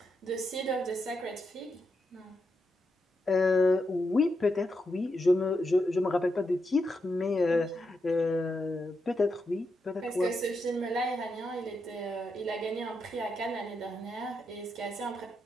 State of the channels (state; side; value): normal; both; correlation 0.84